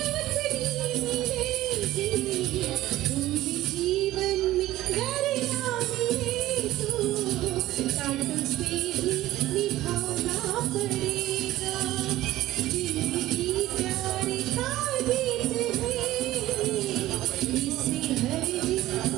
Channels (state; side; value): quieter; left; 15.5 dB